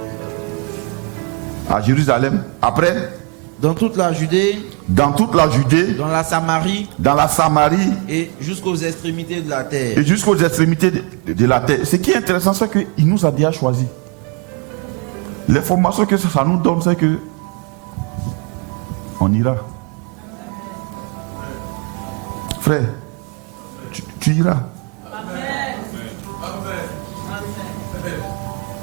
à Jérusalem. Après, dans toute la Judée. Dans toute la Judée. Dans la Samarie. Dans la Samarie. Et jusqu'aux extrémités de la terre. Et jusqu'aux extrémités de la terre. Ce qui est intéressant, c'est qu'il nous a déjà choisi. L'information que ça nous donne, c'est que on ira. Frère, tu iras. Amen.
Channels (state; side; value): quieter; left; 33.9 dB